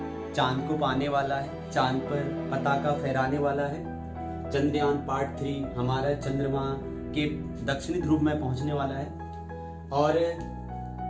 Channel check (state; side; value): identical; both; correlation 1.00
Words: चांद को पाने वाला है, चांद पर पताका फहराने वाला है। चंद्रयान पार्ट 3 हमारा चंद्रमा के दक्षिणी ध्रुव में पहुंचने वाला है और